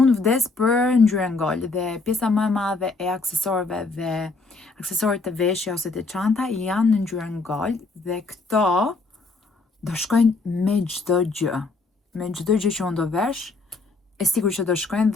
vdes për ngjyrën gold dhe pjesa më e madhe e aksesorëve dhe aksesorit të veshje ose të çanta janë në ngjyrën gold dhe këto do shkojnë me çdo gjë. Me çdo gjë që unë do vesh, e sigurt që do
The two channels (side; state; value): right; quieter; 3.7 dB